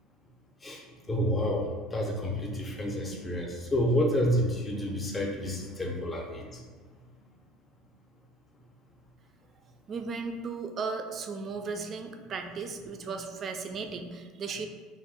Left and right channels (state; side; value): normal; both; correlation 0.50